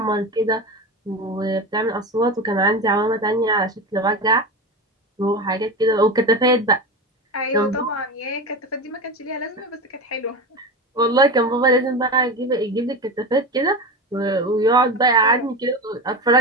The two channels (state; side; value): normal; both; correlation 0.24